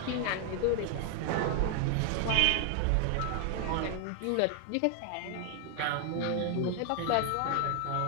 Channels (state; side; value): different; both; correlation 0.00